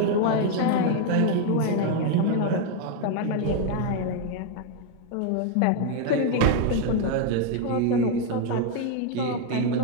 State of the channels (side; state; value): both; different; correlation 0.01